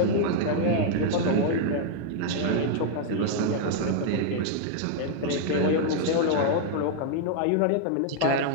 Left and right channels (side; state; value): both; different; correlation -0.01